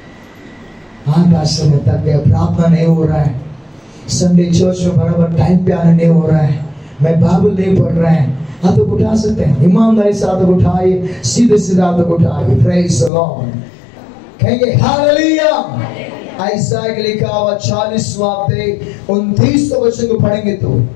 हाँ समय थक गया, प्रार्थना नहीं हो रहा है, संडे चर्च में बराबर टाइम पे आने नहीं हो रहा है, मैं बाइबल नहीं पढ़ रहा है, हाथ उठा सकते हैं। ईमानदारी से हाथ उठाइए, सीधे सीधे हाथ उठाइए। Praise the Lord. कहेंगे हालेलुया। ऐसा लिखा हुआ 40वां अध्याय 29 वचन को पढ़ेंगे तो,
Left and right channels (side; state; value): right; drops out; at 13.1 s